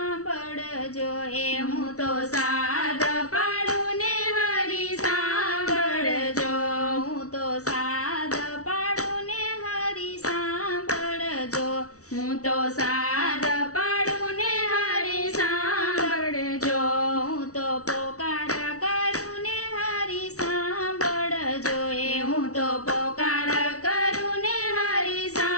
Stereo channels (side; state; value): right; late; 0.65 ms